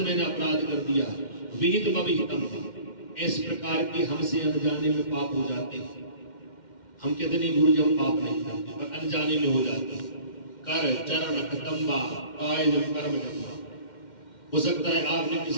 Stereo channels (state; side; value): late; right; 2.1 ms